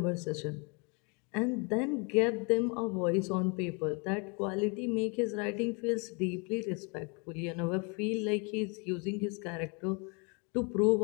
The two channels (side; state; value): right; quieter; 33.2 dB